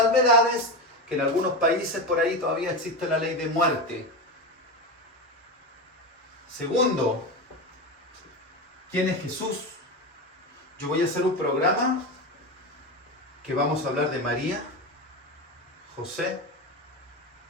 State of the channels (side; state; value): both; normal; correlation 0.19